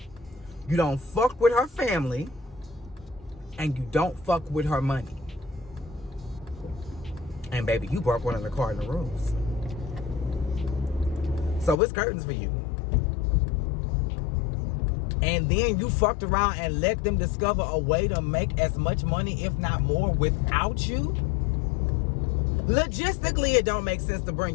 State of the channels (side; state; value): right; drops out; at 11.8 s